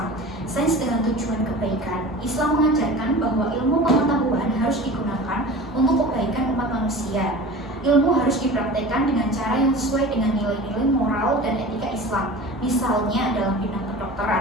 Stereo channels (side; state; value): both; normal; correlation 0.37